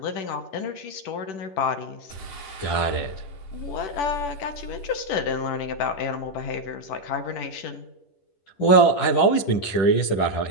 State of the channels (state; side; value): late; right; 10 ms